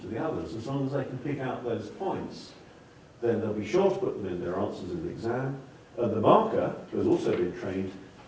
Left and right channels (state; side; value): identical; both; correlation 1.00